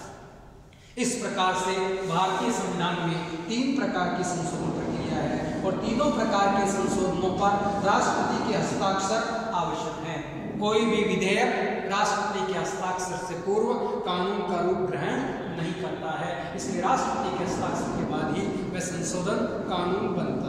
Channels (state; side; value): identical; both; correlation 1.00